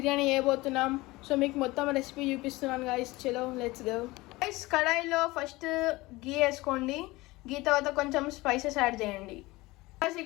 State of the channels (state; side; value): quieter; right; 20.8 dB